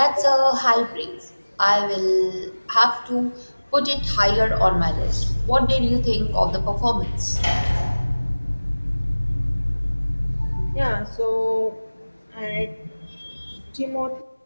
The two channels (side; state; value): both; inverted; correlation -1.00